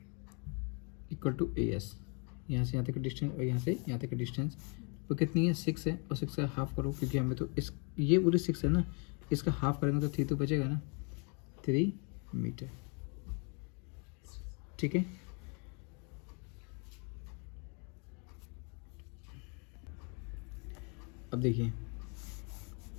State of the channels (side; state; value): right; quieter; 35.3 dB